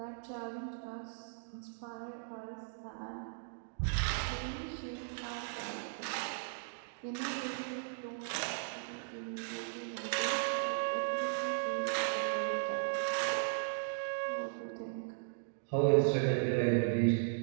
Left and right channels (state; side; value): silent; left; digital silence